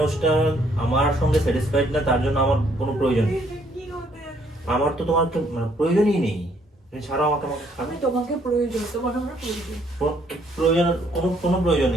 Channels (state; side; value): normal; both; correlation 0.67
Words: আমার সঙ্গে স্যাটিসফাইড না, তার জন্য আমার কোনো প্রয়োজন নেই। কি হতে যাচ্ছে? আমার তো তোমার প্রয়োজনই নেই। তুমি ছাড়ো আমাকে, আমাকে ছাড়ো। আমি তোমাকে প্রয়োজন, তোমার আমার প্রয়োজন। প্রয়োজন কোনো প্রয়োজন